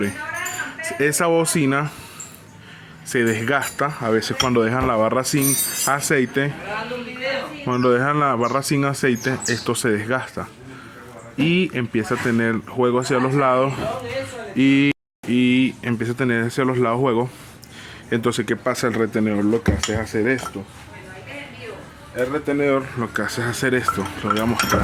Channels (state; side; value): identical; both; correlation 1.00